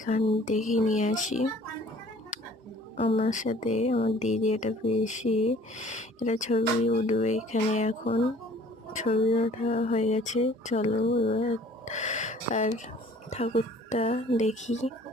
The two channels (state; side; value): normal; both; correlation 0.53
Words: দেখিয়ে নিয়ে আসি। আমার সাথে আমার দিদি, এটা পিসি, এটা ছবি উঠবে এখানে। এখন ছবি ওঠা হয়ে গেছে। চলো এবার আর ঠাকুরটা দেখি,